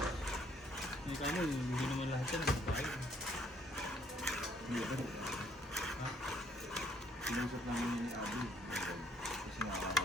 Hindi ka mo, hindi naman lahat yan, hindi ba kayo? Hindi ako. Ha? Sinusap namin yun ni Abby. Kasi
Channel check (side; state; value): both; normal; correlation 0.66